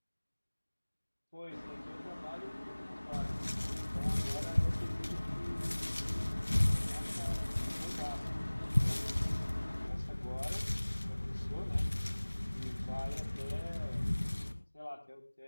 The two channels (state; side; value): inverted; both; correlation -1.00